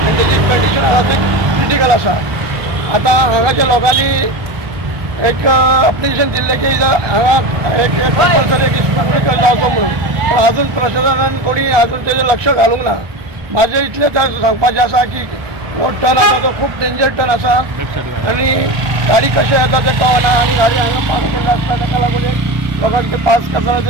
त्याची कंडिशन आसा ती क्रिटिकल आसा. आता हांगाच्या लोकांनी एक अप्लिकेशन दिल्लें की हांगा एक कंपल्सरी एक स्पीड ब्रेकर लावचो म्हणून, पण अजून प्रशासनान कोणी अजून तेजेर लक्ष घालूंक ना. म्हाजें इतलें सांगपाचें आसा की हो टर्न आसा तो खूब डेंजर टर्न आसा आणि गाडी कशें येता तें कळना आणि गाडी हांगा पास केल्ली आसता ताका लागून एक लोकांक ते पास करतना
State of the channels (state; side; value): late; left; 1.2 ms